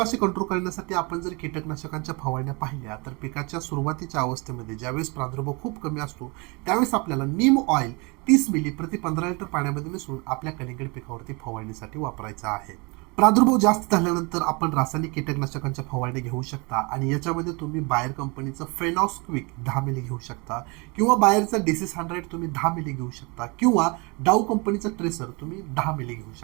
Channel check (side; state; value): left; quieter; 28.8 dB